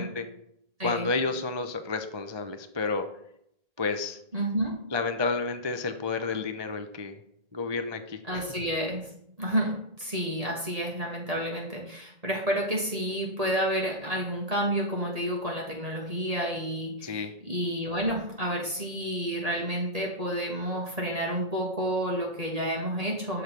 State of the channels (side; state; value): left; late; 1.8 ms